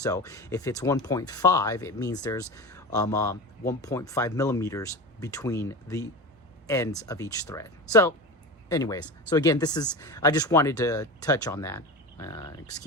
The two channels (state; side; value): normal; both; correlation 0.28